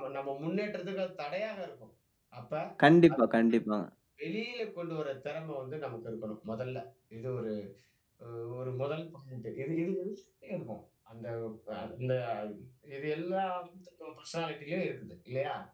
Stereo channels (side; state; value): both; identical; correlation 1.00